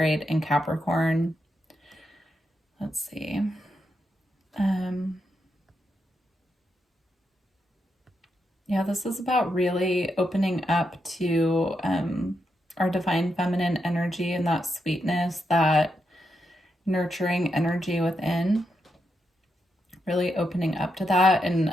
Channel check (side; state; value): both; normal; correlation 0.83